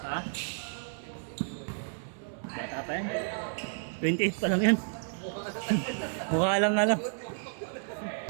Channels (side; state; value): left; silent; digital silence